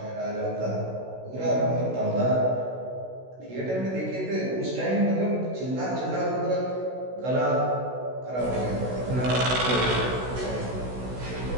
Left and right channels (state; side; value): late; left; 16 ms